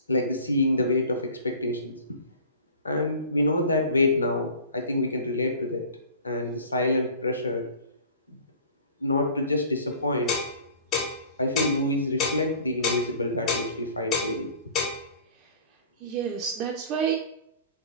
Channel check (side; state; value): both; inverted; correlation -0.44